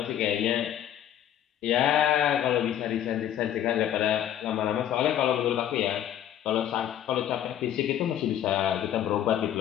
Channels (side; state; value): right; quieter; 10.9 dB